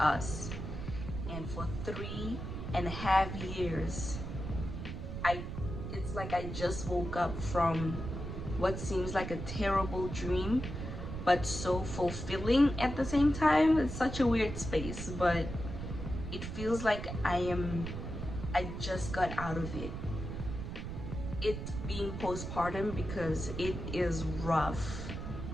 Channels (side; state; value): right; noise; rumble, 6 dB below the sound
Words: And for 3.5 years, it's like I just woke up from what seems like a terrible dream, but so fulfilling at the same time. It's such a weird space, but it feels like I just got out of it. It being postpartum, because it is rough.